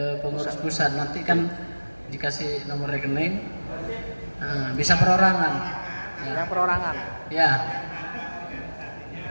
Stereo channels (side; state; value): both; inverted; correlation -1.00